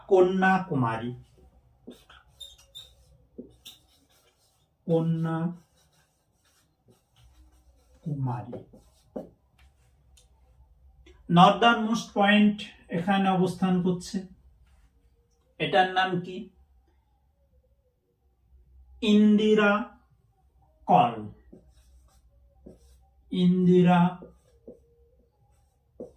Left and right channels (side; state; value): both; identical; correlation 1.00